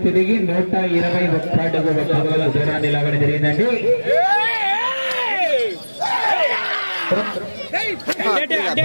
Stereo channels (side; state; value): both; inverted; correlation -1.00